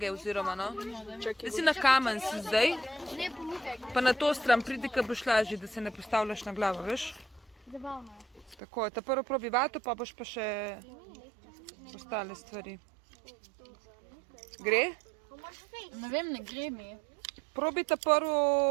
oziroma, no. Da si na kamen si zdaj, pa na to stran pridi, ko boš lažje, da se ne postavljaš na glavo, veš. Tako, ta prvo probi vato, pa boš pa še ostale stvari. Gre? Ne vem, ne gre mi. Probi ta prvo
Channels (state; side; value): drops out; left; at 8.6 s